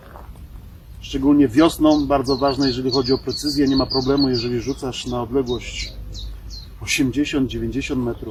szczególnie wiosną, bardzo ważne, jeżeli chodzi o precyzję. Nie ma problemu, jeżeli rzucasz na odległość 80, 90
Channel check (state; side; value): identical; both; correlation 1.00